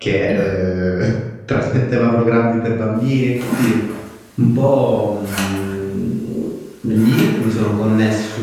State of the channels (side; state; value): both; identical; correlation 1.00